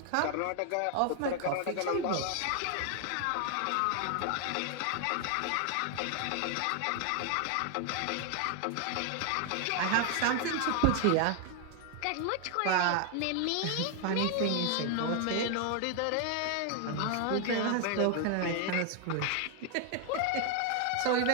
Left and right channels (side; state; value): both; different; correlation 0.00